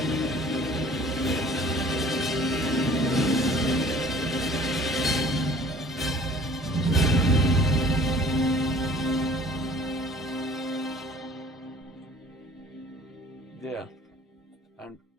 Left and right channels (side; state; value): both; normal; correlation 0.50